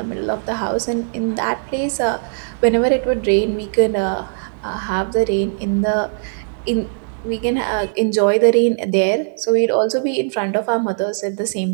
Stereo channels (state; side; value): silent; left; digital silence